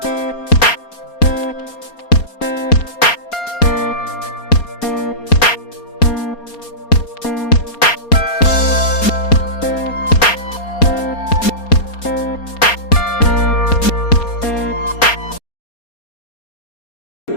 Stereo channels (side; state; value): right; late; 4.3 ms